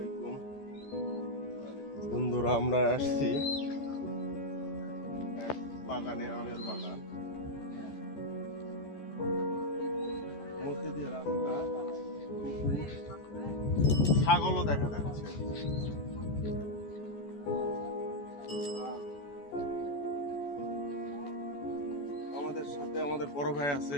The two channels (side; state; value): right; late; 14 ms